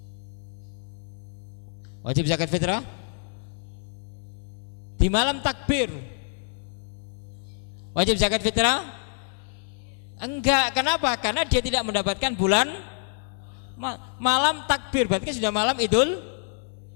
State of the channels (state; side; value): silent; right; 60 dB below the other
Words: Wajib zakat fitrah? Di malam takbir wajib zakat fitrah? Enggak. Kenapa? Karena dia tidak mendapatkan bulan malam takbir, berarti sudah malam Idul